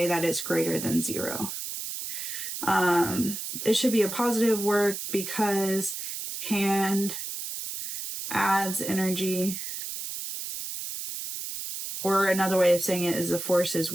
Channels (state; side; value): noise; right; hiss, 6 dB below the sound